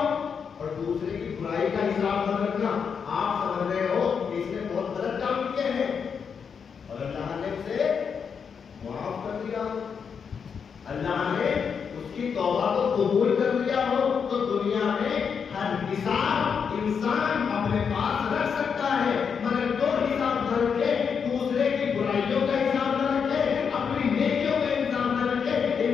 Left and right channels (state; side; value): quieter; right; 6.5 dB